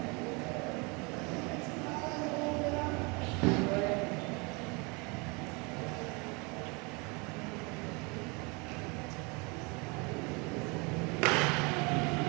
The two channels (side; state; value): left; quieter; 29.2 dB